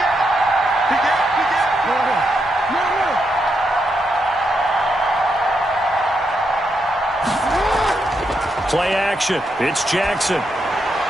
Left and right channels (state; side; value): normal; both; correlation 0.81